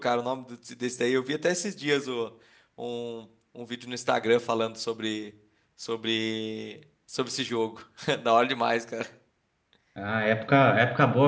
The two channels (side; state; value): both; identical; correlation 1.00